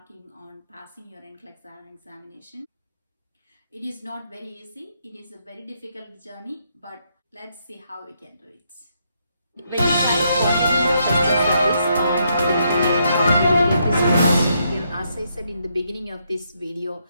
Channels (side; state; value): both; inverted; correlation -0.77